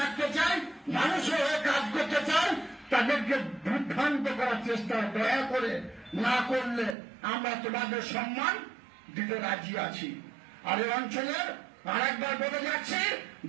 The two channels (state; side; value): drops out; left; at 7.0 s